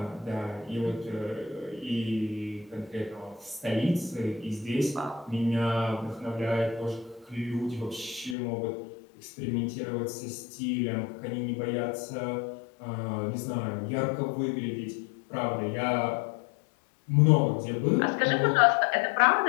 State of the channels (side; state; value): right; drops out; at 8.3 s